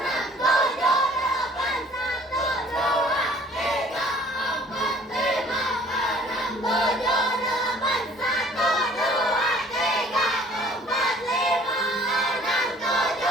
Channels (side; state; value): both; normal; correlation 0.54